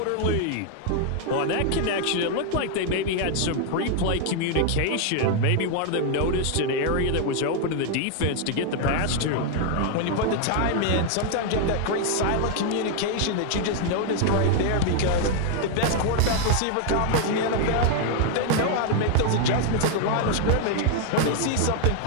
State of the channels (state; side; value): different; both; correlation 0.00